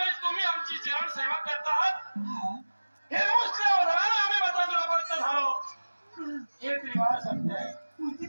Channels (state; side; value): inverted; both; correlation -1.00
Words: तुम्ही आमची जीवन सेवा करता आहात हे मुस्लिम आम्ही मतदारापर्यंत झालो. हे त्रिवार सत्य आहे. तुमची